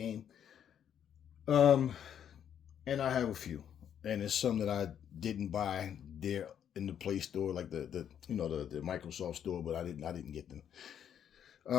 And I have a few, and it's some that I didn't buy there in the Play Store, like the Microsoft Store, but I didn't get them.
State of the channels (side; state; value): right; quieter; 9.2 dB